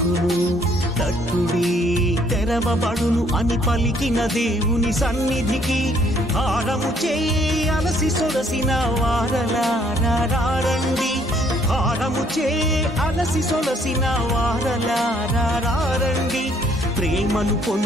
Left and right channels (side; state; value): both; normal; correlation 0.65